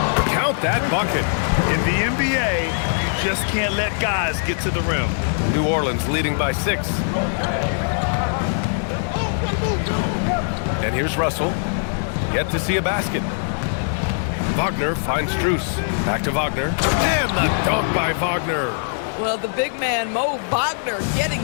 Count that bucket. In the NBA, you just can't let guys get to the rim. New Orleans leading by 6. And here's Russell. Yet to see a basket. Wagner finds Strus. Back to Wagner. And the dunk by Wagner. Well, the big man, Mo Wagner, getting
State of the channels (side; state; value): right; silent; digital silence